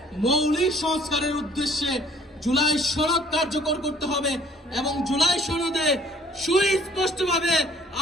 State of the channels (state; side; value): normal; both; correlation 0.57